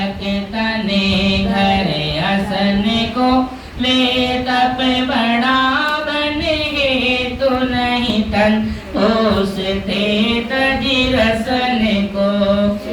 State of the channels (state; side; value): identical; both; correlation 1.00